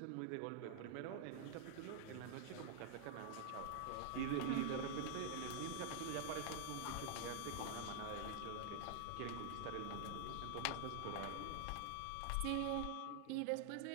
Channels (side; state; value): both; different; correlation -0.01